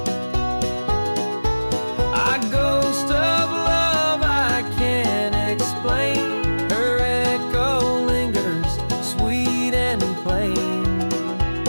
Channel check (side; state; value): both; inverted; correlation -1.00